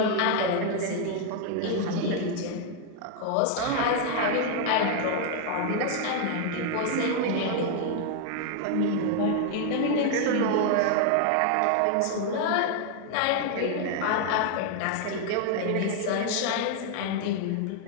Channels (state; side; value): different; both; correlation 0.00